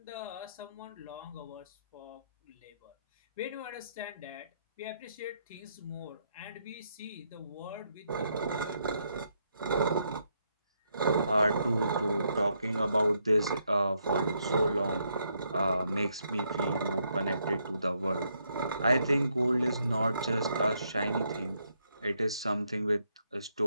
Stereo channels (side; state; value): both; inverted; correlation -0.76